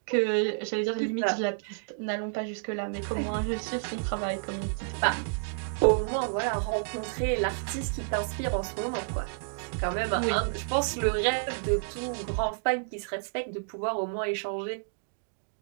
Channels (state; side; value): silent; left; digital silence